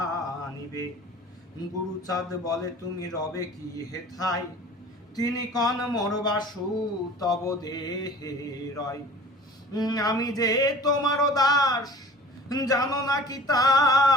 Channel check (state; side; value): normal; both; correlation 0.44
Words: গুরুচাঁদ বলে তুমি রবে কি হেথায়, তিনি কন মোর বাসু তব দেহে রয়। আমি যে তোমার দাস, জানো নাকি